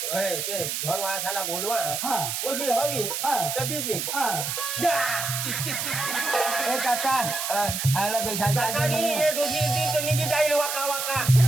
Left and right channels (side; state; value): right; noise; hiss, 2 dB below the sound